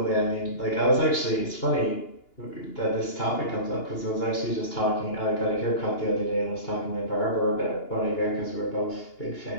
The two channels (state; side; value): late; right; 2.9 ms